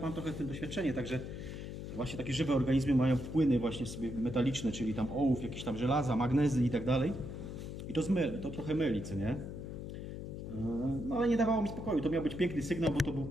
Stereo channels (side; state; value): left; noise; hum, 8 dB below the sound